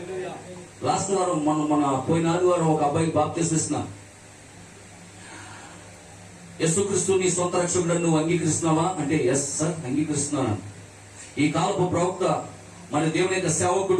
లాస్ట్ వారం మన పోయిన ఆదివారం ఒక అబ్బాయికి బాప్తిస్మం ఇస్తున్నాను. యేసుక్రీస్తు నీ సొంత రక్షకుడు నువ్వు అంగీకరిస్తున్నావా అంటే ఎస్ సార్ అంగీకరిస్తున్నాను. ఈ కాలపు ప్రవక్త మన దేవుని యొక్క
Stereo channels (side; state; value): both; identical; correlation 1.00